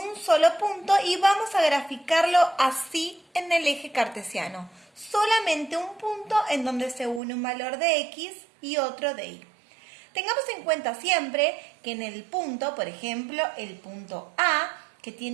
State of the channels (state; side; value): drops out; left; at 7.2 s